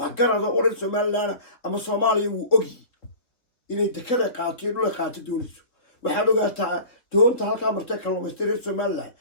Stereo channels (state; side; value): late; right; 3.7 ms